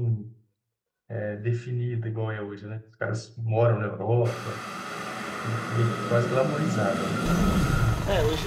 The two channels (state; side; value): identical; both; correlation 1.00